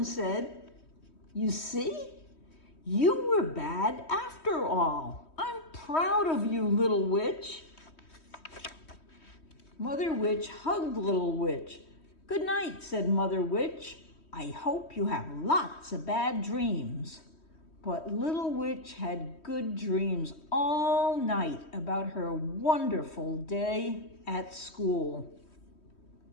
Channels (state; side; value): late; right; 3.1 ms